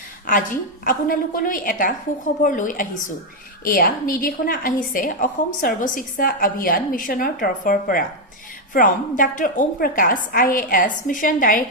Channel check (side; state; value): both; normal; correlation 0.02